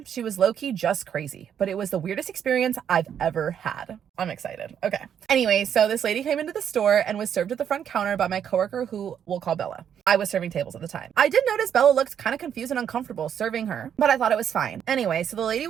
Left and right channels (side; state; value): left; quieter; 8.7 dB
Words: She was low-key just crazy, but it was the weirdest experience I've ever had. I'm excited. Okay. Anyway, so this lady came into the store and was served at the front counter by my coworker, who we'll call Bella. I was serving tables at the time. I did notice Bella looked kind of confused and uncomfortable serving her, but I thought it was fine. Anyway, so the lady